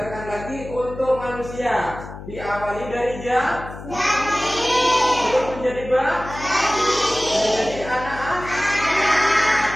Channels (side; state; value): left; noise; hum, 13 dB below the sound